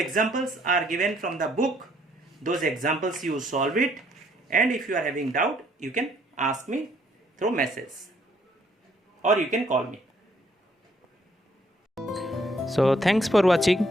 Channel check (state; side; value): normal; both; correlation 0.66